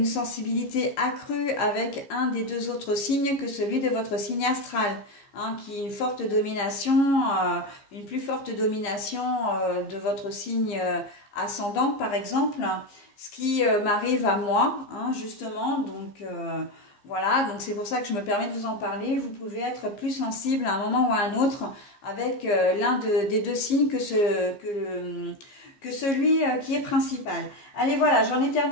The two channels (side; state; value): right; late; 15 ms